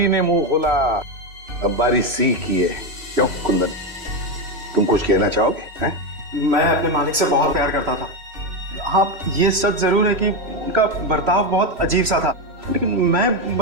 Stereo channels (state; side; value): late; left; 3.0 ms